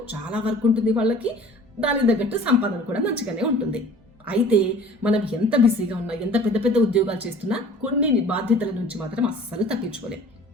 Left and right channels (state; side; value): normal; both; correlation 0.47